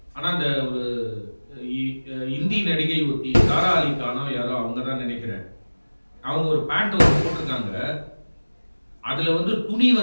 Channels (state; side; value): inverted; both; correlation -1.00